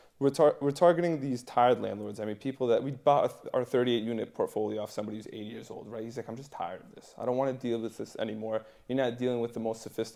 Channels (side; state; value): both; identical; correlation 1.00